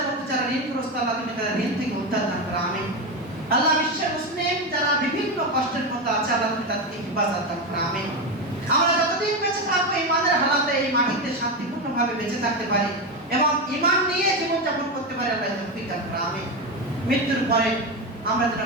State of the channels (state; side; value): normal; both; correlation 0.15